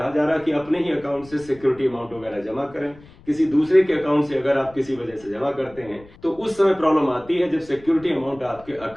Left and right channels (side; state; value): left; noise; rumble, 23 dB below the sound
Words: जा रहा है कि अपने ही अकाउंट से सिक्योरिटी अमाउंट वगैरह जमा करें। किसी दूसरे के अकाउंट से अगर आप किसी वजह से जमा करते हैं तो उस समय प्रॉब्लम आती है जब सिक्योरिटी अमाउंट आपके